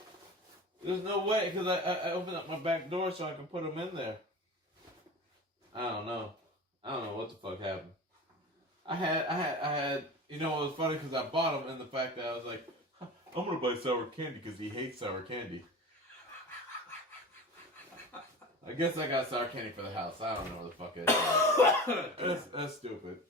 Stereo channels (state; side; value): normal; both; correlation 0.33